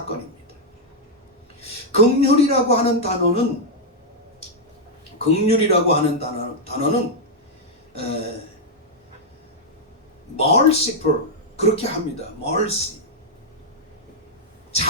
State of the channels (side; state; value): both; normal; correlation -0.04